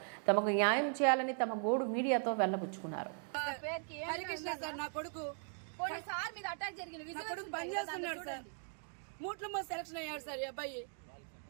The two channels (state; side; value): silent; left; 52 dB below the other